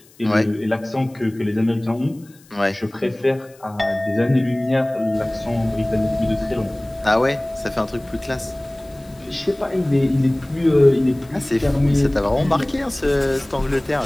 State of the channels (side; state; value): left; noise; hiss, 28 dB below the sound